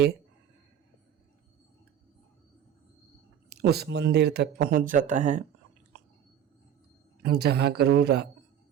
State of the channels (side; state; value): left; quieter; 9.6 dB